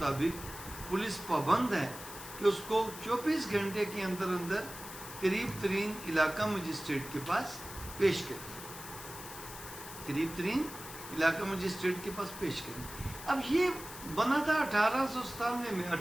پولیس پابند ہے کہ اس کو 24 گھنٹے کے اندر اندر قریب ترین علاقہ مجسٹریٹ کے پاس پیش کرے، قریب ترین علاقہ مجسٹریٹ کے پاس پیش کریں۔ اب یہ بنا تھا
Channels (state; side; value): noise; left; hiss, 12 dB below the sound